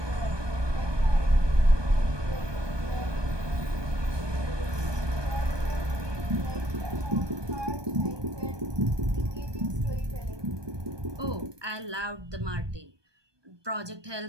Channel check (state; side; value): late; left; 1.2 ms